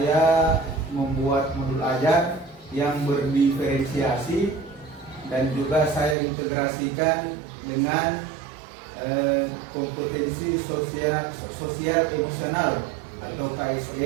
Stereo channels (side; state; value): left; drops out; at 6.2 s